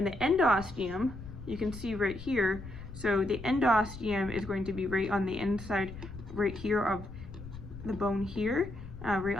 endosteum, you can see right here. So the endosteum is going to be right on the inside, right here of the bone here, right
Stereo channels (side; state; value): left; noise; rumble, 13 dB below the sound